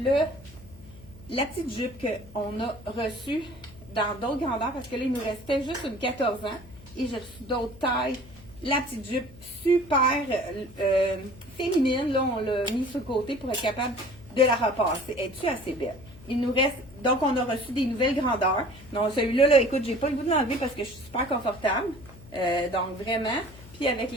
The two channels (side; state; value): left; noise; hum, 20 dB below the sound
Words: la petite jupe qu'on a reçue dans d'autres grandeurs parce que là, il nous restait juste une 14 ans et j'ai reçu d'autres tailles. La petite jupe super féminine, là, on l'a mis sur le côté pour être capable de la repasser. Es-tu assez belle? Il nous reste, donc on a reçu des nouvelles grandeurs. Donc celui-là, là, écoute, j'ai pas le goût de l'enlever parce que je suis super confortable. Donc vraiment. Puis avec